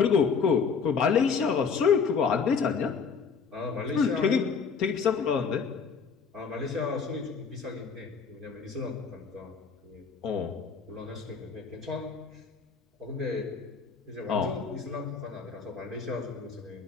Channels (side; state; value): right; quieter; 5.7 dB